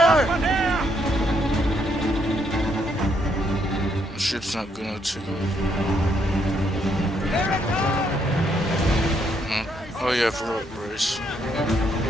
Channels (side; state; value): both; normal; correlation 0.74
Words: Up here! The ship's not gonna take Here it comes! Oh yeah, I forgot brace.